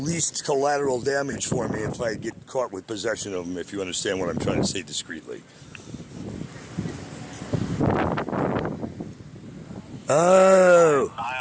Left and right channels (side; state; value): both; identical; correlation 1.00